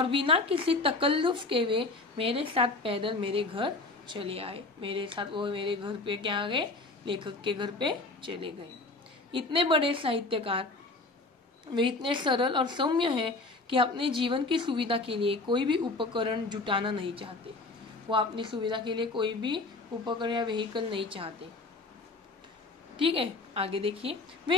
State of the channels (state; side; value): quieter; right; 3.3 dB